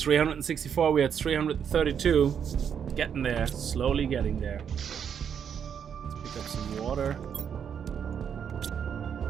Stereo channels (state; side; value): quieter; left; 7.9 dB